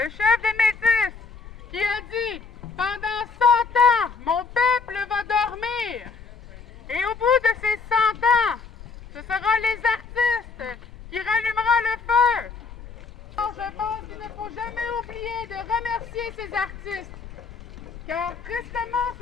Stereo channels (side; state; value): right; quieter; 4.7 dB